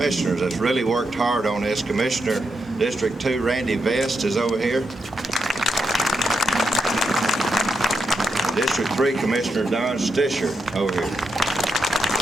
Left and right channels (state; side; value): normal; both; correlation 0.84